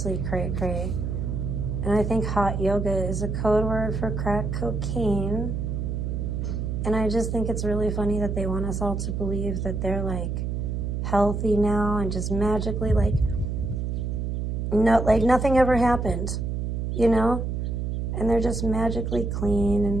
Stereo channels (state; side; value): noise; right; hum, 2 dB below the sound